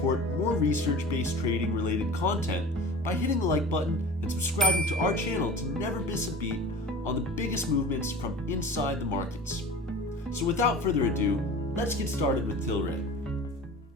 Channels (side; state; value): both; normal; correlation 0.38